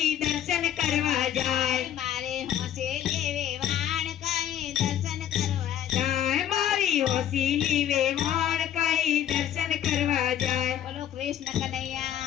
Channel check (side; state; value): right; quieter; 10.7 dB